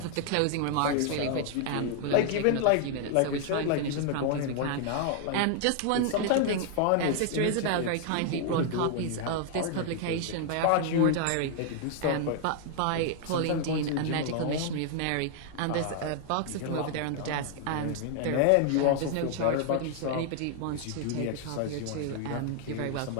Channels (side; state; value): both; different; correlation 0.00